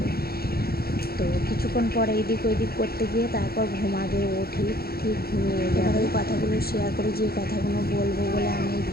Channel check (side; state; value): right; late; 0.45 ms